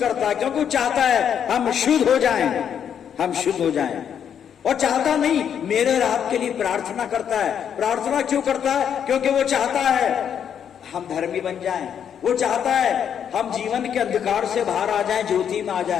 है, क्योंकि वो चाहता है हम शुद्ध हो जाएं, हम शुद्ध हो जाएं। और चाहता नहीं, मेरे और आपके लिए प्रार्थना करता है। प्रार्थना क्यों करता है? क्योंकि वो चाहता है हम धर्मी बन जाएं, वो चाहता है हम जीवन के अंधकार से बाहर आ जाएं, ज्योति में आ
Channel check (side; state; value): right; quieter; 8.5 dB